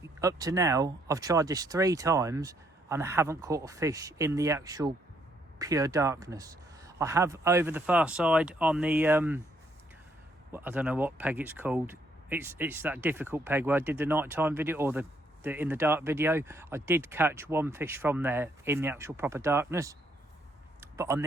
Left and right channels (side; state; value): both; normal; correlation 0.71